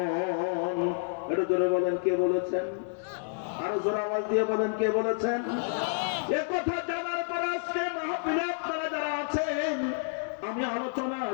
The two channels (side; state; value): right; silent; 58 dB below the other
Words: এটা জোরে বলেন কে বলেছেন? আরো জোরে আওয়াজ দিয়ে বলেন, কে বলেছেন? এ কথা জানার পর আজকে মাহফিলে আপনারা যারা আছেন, আমি আলোচনা